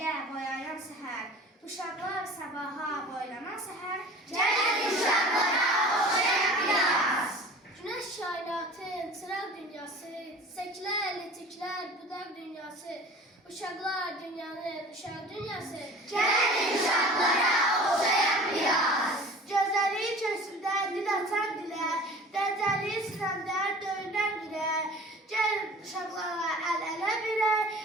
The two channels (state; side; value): normal; both; correlation 0.42